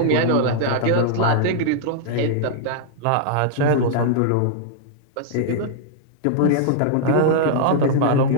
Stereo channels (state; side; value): different; both; correlation -0.01